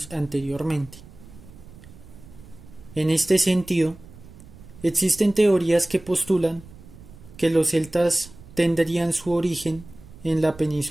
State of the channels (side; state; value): right; noise; rumble, 19 dB below the sound